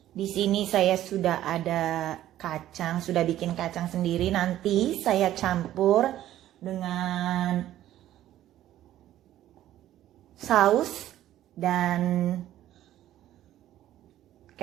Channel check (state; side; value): quieter; left; 13.0 dB